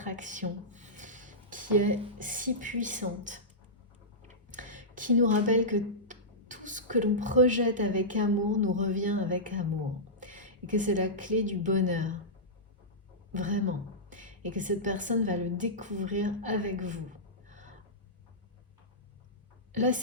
qui est si puissante, qui nous rappelle que tout ce que l'on projette avec amour nous revient avec amour. Et que c'est la clé du bonheur. Vraiment. Et que cette personne va le découvrir avec vous. Là,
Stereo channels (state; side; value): normal; both; correlation -0.15